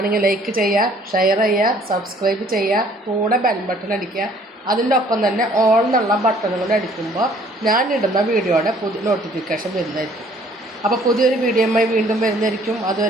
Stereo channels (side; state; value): both; normal; correlation 0.58